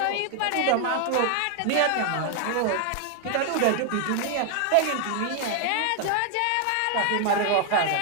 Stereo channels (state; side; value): different; both; correlation 0.01